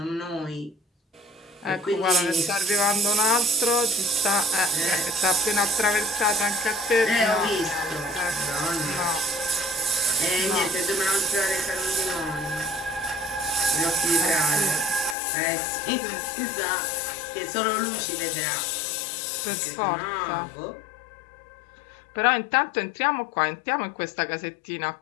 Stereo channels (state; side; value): drops out; right; at 15.2 s